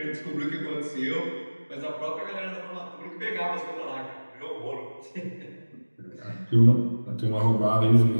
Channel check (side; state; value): both; inverted; correlation -1.00